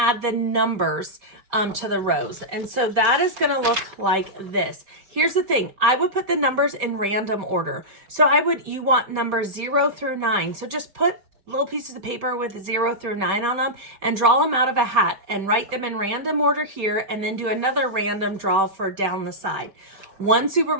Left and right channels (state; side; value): late; left; 5.1 ms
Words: the numbers to the rows. And so that is going to look like this. Here's the thing. I would put the numbers in random order. So you want numbers 0 through 9. So just put little pieces of paper with 0 through 9 on them and draw them out of a hat and write them in random order here, and then do another random draw for down the side. One Super